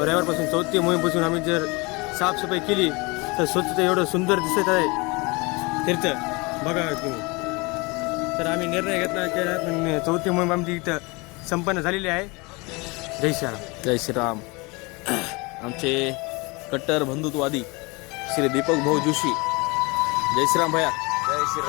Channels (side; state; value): right; quieter; 26.7 dB